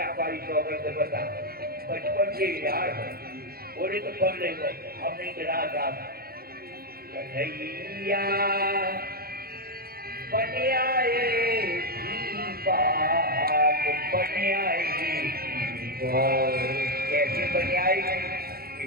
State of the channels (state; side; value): late; left; 0.44 ms